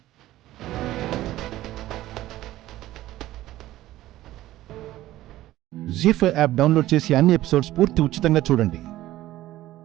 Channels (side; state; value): left; quieter; 15.2 dB